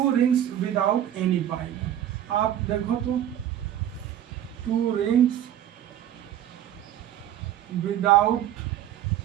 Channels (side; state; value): left; quieter; 11.2 dB